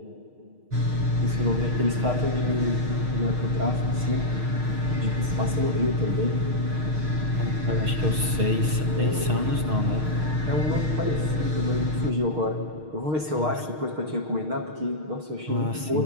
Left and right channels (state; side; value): late; left; 6.5 ms